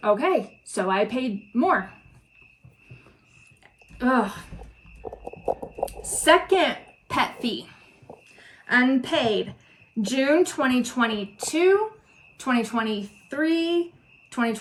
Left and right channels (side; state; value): both; identical; correlation 1.00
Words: Okay, so I paid more. Ugh. Second pet fee, unpaid, June 2022, 2023,